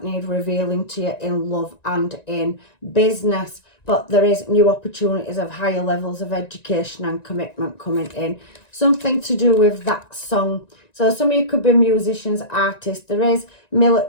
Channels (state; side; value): late; right; 1.9 ms